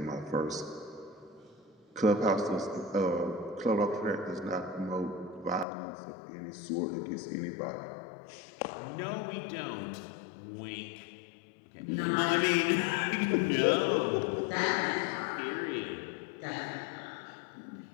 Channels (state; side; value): drops out; right; at 5.7 s